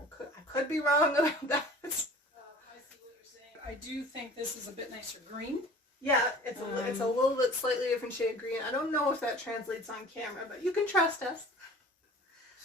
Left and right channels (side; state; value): both; normal; correlation 0.44